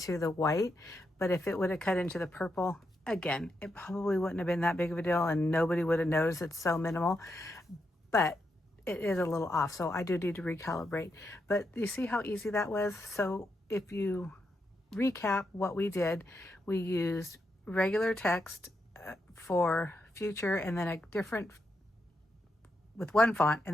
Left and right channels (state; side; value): normal; both; correlation 0.83